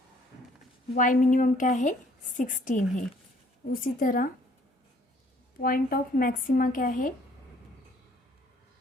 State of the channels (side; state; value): both; normal; correlation 0.60